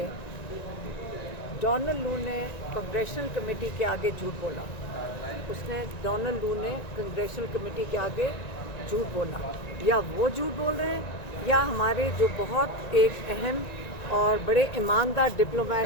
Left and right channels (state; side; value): late; right; 1.9 ms